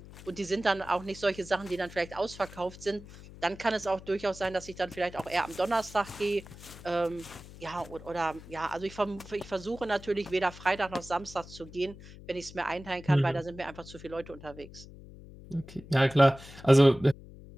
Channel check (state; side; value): noise; left; hum, 17 dB below the sound